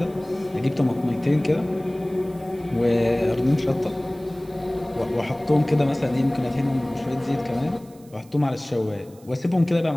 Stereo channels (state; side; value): noise; right; hiss, 27 dB below the sound